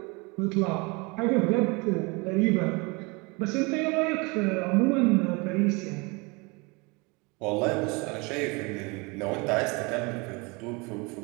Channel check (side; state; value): left; quieter; 27.8 dB